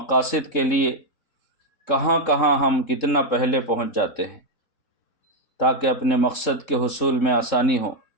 کے لیے کہاں کہاں ہم کتنا پہلے پہنچ جاتے ہیں تاکہ اپنے مقصد کے حصول میں آسانی ہو۔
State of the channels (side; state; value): right; late; 3.7 ms